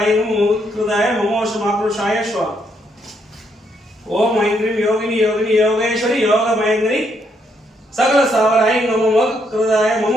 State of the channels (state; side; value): normal; both; correlation 0.74